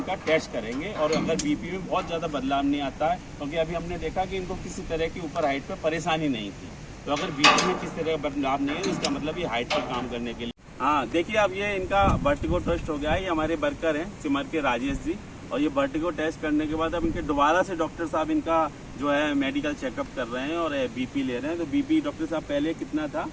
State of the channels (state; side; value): identical; both; correlation 1.00